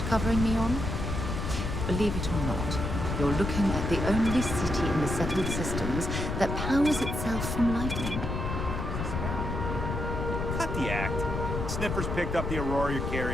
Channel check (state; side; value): noise; left; rumble, 3 dB below the sound